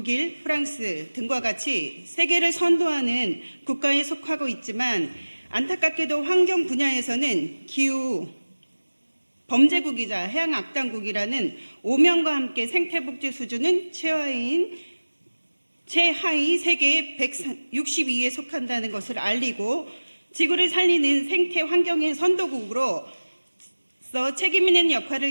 프랑스 등과 같이 세계를 선도하는 국가에 속하고 있지만 안타깝게도 환경 분야에서는 기후 범죄국이자 해양악당국이라는 오명과 함께 생태복지 수준은 최하위 세계 162위에 속한다는 것을 알리고 지구를 살리는 생태 환경의 선도국으로 책임 있는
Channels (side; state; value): both; inverted; correlation -1.00